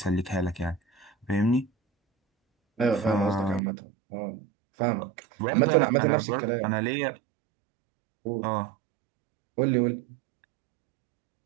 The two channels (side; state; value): left; drops out; at 3.6 s